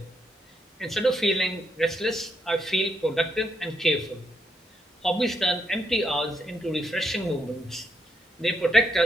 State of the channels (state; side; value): normal; both; correlation 0.77